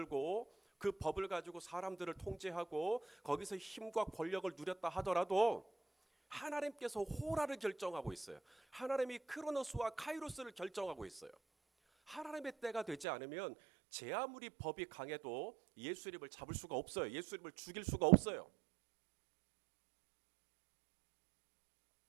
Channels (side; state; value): left; drops out; at 13.1 s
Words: 그 법을 가지고 사람들을 통제하고 거기서 힘과 권력을 누렸다 하더라도 하나님께서 호라를 결정하고 있어요. 하나님이 크로노스와 카이로스를 결정하고 있어요. 하나님의 때가 되지 않으면 제 아무리 법이 강해도 예수님을 잡을 수가 없어요. 예수님을 죽일 수가 없어요.